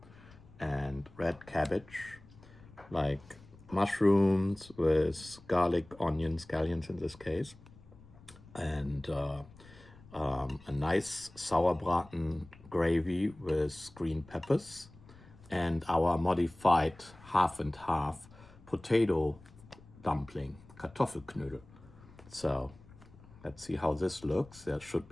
and red cabbage, like mushrooms with garlic, onions, scallions in this case, and a nice Sauerbraten gravy with green peppers, and our modified half and half potato dumpling, Kartoffelknödel. So let's see how this looks. There should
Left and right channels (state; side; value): noise; left; rumble, 22 dB below the sound